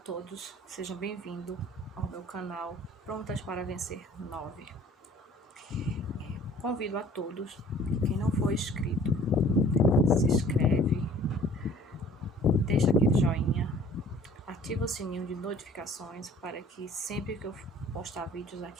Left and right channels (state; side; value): normal; both; correlation 0.51